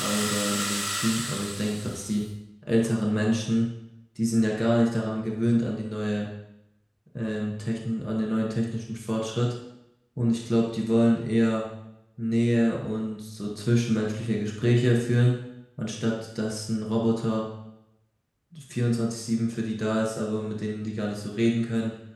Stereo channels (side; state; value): both; identical; correlation 1.00